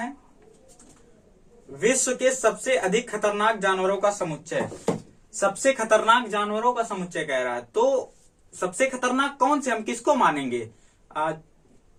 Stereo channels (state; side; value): identical; both; correlation 1.00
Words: विश्व के सबसे अधिक खतरनाक जानवरों का समुच्चय। सबसे खतरनाक जानवरों का समुच्चय कह रहा है। तो सबसे खतरनाक कौन से, हम किसको मानेंगे,